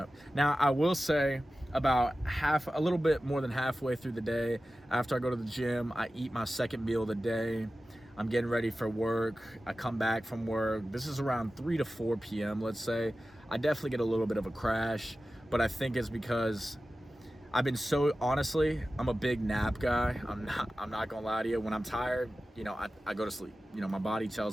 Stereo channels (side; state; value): both; normal; correlation 0.95